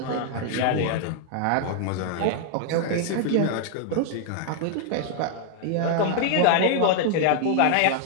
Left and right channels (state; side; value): different; both; correlation 0.00